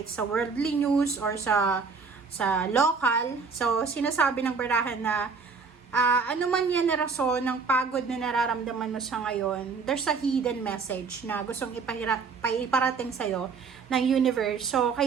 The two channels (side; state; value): left; quieter; 5.1 dB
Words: sa worldly news or sa local. So, sinasabi ng barahan na ano man yan na rason ng pagod na nararamdaman mo sa ngayon, there's a hidden message na gustong iparating sa'yo ng universe. So,